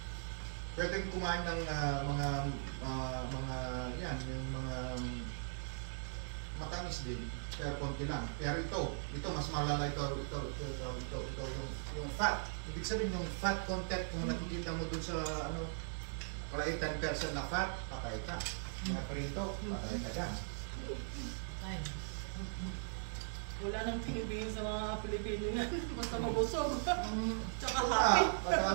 Pwedeng kumain ng mga yan, yung mga matamis din, pero konti lang. Pero ito mas malala ito yung fat. Ibig sabihin yung fat content kung nakikita mo dun sa ano, kalay 10% na fat, patay ka. Mga prito, patay ka dyan. Wala nang tinibigin sa mga Pilipino yan. Basta mabusog. Tsaka happy.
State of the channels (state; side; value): silent; left; digital silence